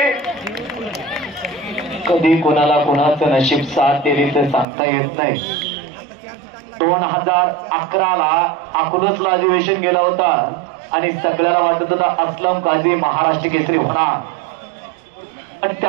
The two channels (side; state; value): left; drops out; at 4.7 s